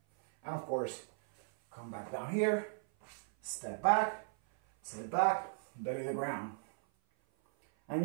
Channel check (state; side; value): silent; left; 53 dB below the other